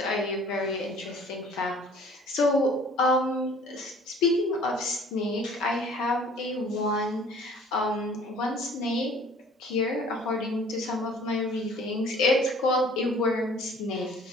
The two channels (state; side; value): normal; both; correlation 0.52